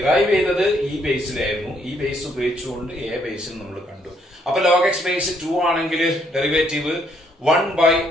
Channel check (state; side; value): normal; both; correlation 0.70